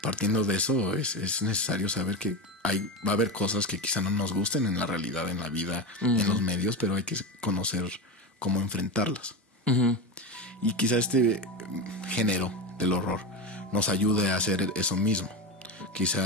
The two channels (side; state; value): both; normal; correlation 0.19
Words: partiendo de eso, es necesario saber que va a haber cosas que quizá no nos gusten en la realidad, en la vida, en los medios, pero hay que conocer cómo enfrentarlas. Y quizá este género del horror nos ayude a hacer eso mismo.